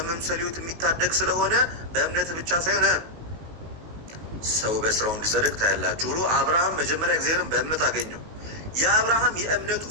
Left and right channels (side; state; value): left; late; 19 ms